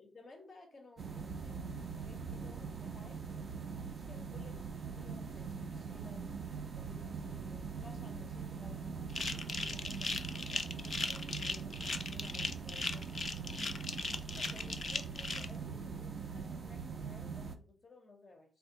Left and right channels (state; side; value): normal; both; correlation 0.67